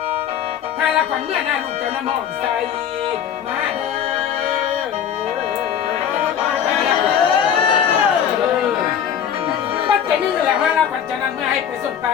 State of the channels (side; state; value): right; quieter; 8.9 dB